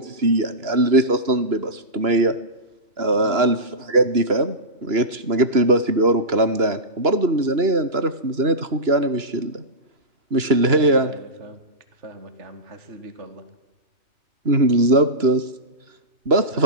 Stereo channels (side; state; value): left; late; 2.9 ms